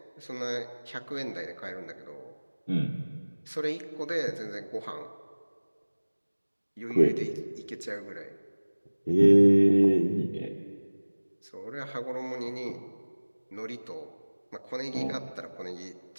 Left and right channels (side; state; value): both; inverted; correlation -1.00